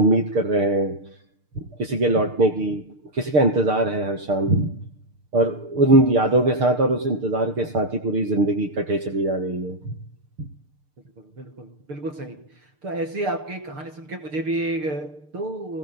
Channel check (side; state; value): left; late; 6.6 ms